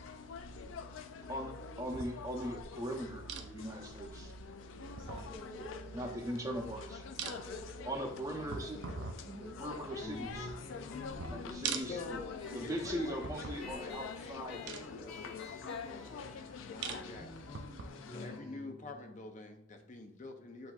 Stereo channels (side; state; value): both; normal; correlation 0.43